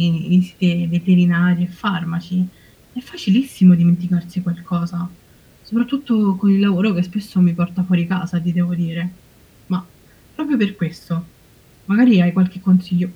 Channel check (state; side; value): identical; both; correlation 1.00